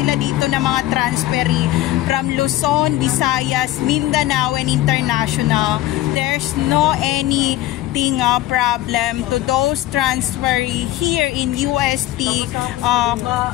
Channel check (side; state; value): right; quieter; 15.1 dB